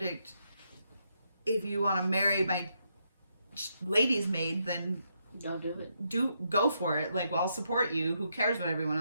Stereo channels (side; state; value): both; inverted; correlation -0.80